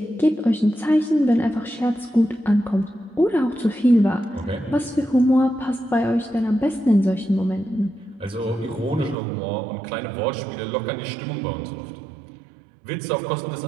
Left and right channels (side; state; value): left; drops out; at 9.2 s